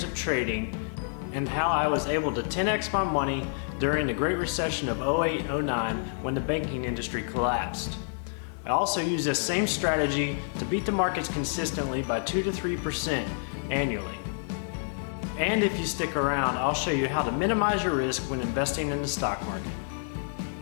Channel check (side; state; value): right; silent; digital silence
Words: of trading and how I was able to 10x my money during the Great Recession of 08-09 when the banking industry collapsed. I also use this same strategy to beat the markets consistently by 2 to 3% annually. And if you stick around, I'll show you how to minimize your risk when investing in the stock market.